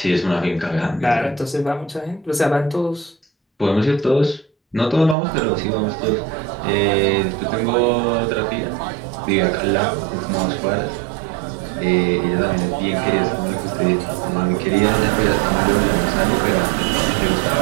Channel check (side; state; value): left; drops out; at 5.2 s